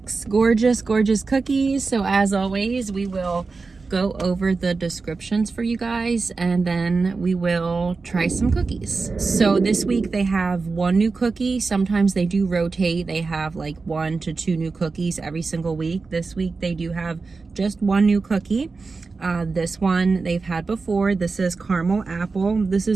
gorgeous cookies. So as always, we will go over the descriptions for you guys and then we will try some cookies. So this week they have 1 new cookie. Sometimes they do rotate. They have like 1 to 2 new cookies every single week. This week they do have just 1 new cookie. This one they've had before. This is caramel apple. This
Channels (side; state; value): left; quieter; 4.2 dB